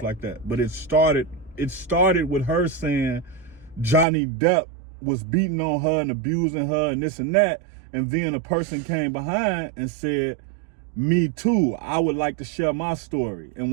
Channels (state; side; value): drops out; left; at 4.0 s